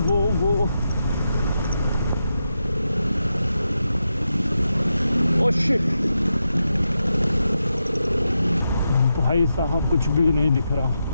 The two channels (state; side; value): inverted; both; correlation -0.87